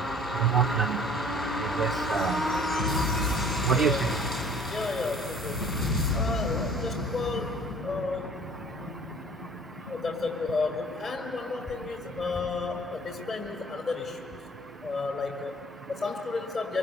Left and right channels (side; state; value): both; normal; correlation 0.52